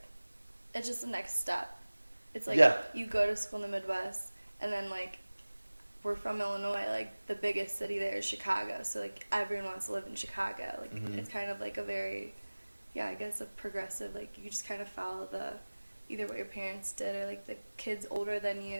It's just the next step. It's like, you go to school in the Midwest, and then, like, we're from Illinois, like, the biggest city there is Chicago, so, like, everyone wants to live in Chicago. Like, it's kind of like a very, I guess a progressive, like, you just kind of follow the either what your parents did or like the kids older than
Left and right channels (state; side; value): inverted; both; correlation -1.00